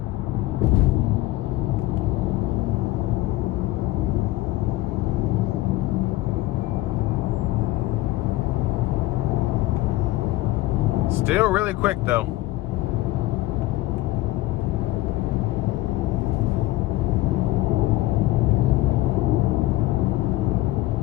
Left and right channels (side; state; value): right; quieter; 17.4 dB